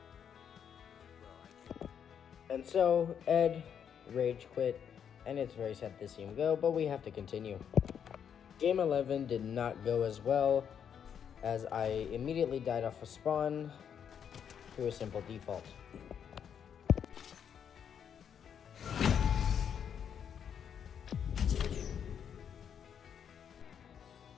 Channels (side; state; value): right; quieter; 8.1 dB